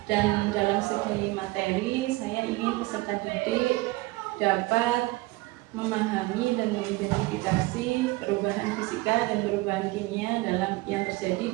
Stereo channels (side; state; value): left; quieter; 21.3 dB